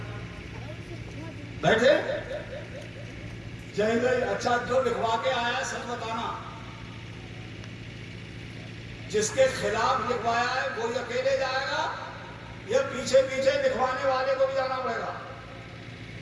بیٹھے جائیں گے. اچھا جو لکھوا کے آیا ہے سچ بتانا, جس کے خلاف لکھوایا ہے وہی اکیلے جائے گا یا پیچھے پیچھے لکھوانے والے کو بھی جانا پڑے گا؟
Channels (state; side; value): identical; both; correlation 1.00